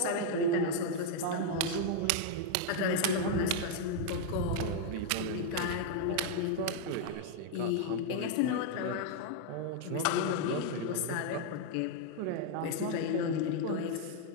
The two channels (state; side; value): different; both; correlation 0.00